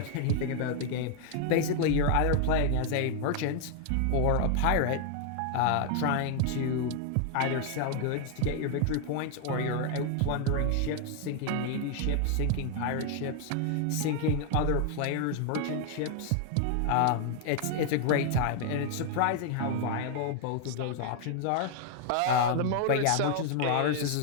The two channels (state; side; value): different; both; correlation 0.00